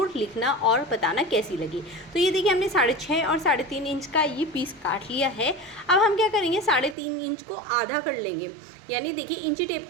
लिखना और बताना कैसी लगी। तो ये देखिए हमने 6.5 और 3.5 इंच का ये पीस काट लिया है। अब हम क्या करेंगे, 3.5 इंच को आधा कर लेंगे, यानी देखिए इंची टेप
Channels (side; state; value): left; drops out; at 7.0 s